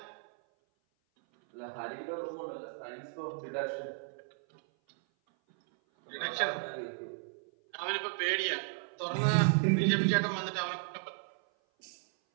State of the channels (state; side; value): silent; left; 55 dB below the other